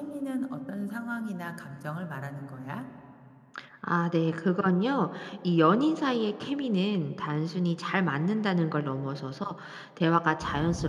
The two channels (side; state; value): both; identical; correlation 1.00